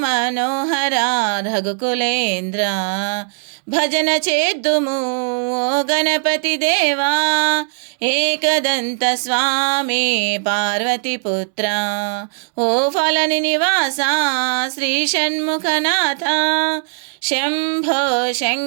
రఘుకులేంద్ర భజన చేద్దుము ఓ గణపతి దేవా ఏకదంత స్వామి పార్వతీపుత్ర ఓ ఫలని నివాస శ్రీ షణ్ముఖనాథ శంభో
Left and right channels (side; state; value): left; silent; 67 dB below the other